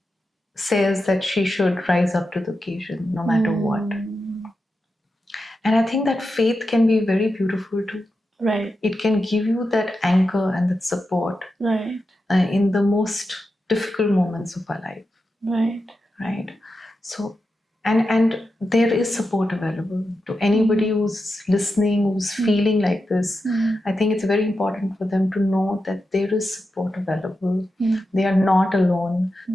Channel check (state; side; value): normal; both; correlation 0.89